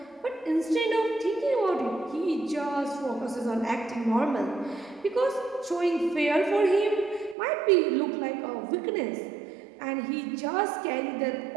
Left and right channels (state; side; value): drops out; left; at 7.4 s